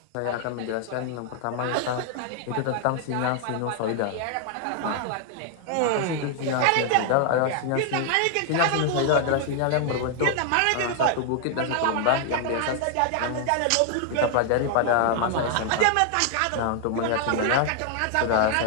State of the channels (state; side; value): different; both; correlation 0.00